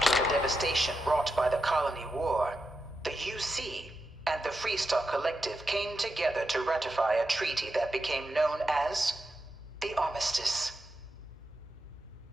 devastation wrought by the Colony War, the UC and the Freestar Collective came together to ratify a treaty that became known as the Armistice.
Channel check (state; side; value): normal; both; correlation 0.88